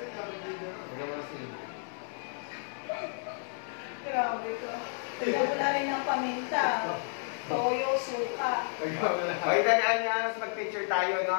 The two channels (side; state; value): right; silent; 57 dB below the other